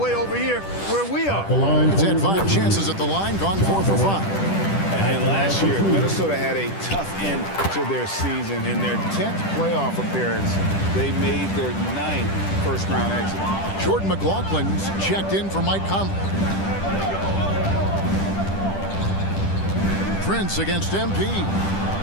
over here where we are. He's had 5 chances at the line, gone 4 for 5. And last year, Minnesota had a tough end to their season. In their 10th playoff appearance, they made their 9th first-round exit. Jordan McLaughlin's checked in for Mike Conley. Prince against MP.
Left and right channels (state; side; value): late; right; 10 ms